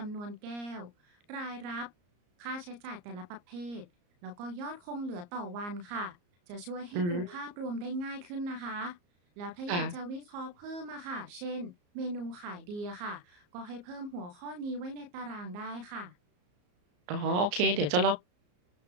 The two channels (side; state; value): left; late; 34 ms